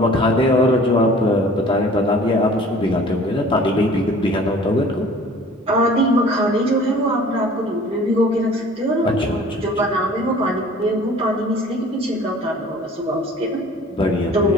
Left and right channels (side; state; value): both; normal; correlation 0.49